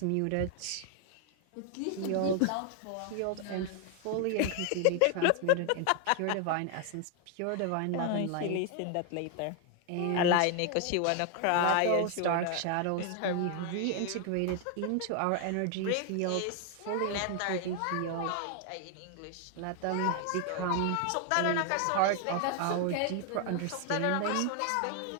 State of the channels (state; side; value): different; both; correlation 0.00